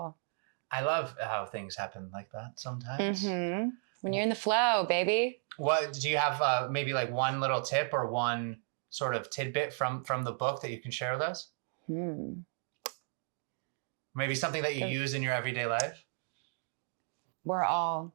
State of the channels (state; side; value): silent; left; 55 dB below the other